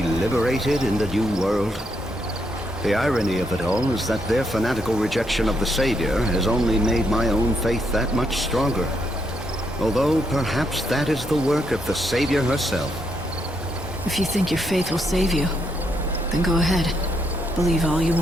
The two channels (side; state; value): both; normal; correlation 0.77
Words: liberated in the new world? The irony of it all is that their fanatical rejection of the Savior has only made my own faith that much stronger. Although perhaps that is the work of the Savior herself. If you think your faith will save you, then go ahead. Believe all you